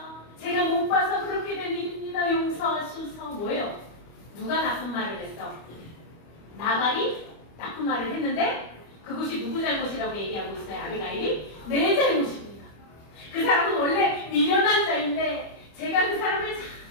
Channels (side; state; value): right; late; 25 ms